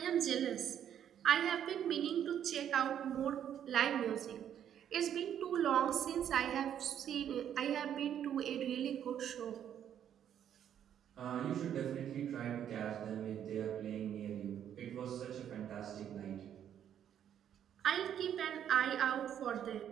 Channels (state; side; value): quieter; left; 9.7 dB